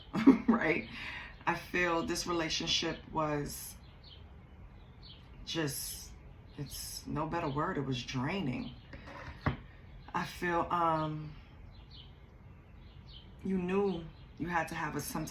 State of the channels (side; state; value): both; identical; correlation 1.00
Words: Right? I feel this relationship was just, it's no better word, it was draining. I feel, you knew you had to have some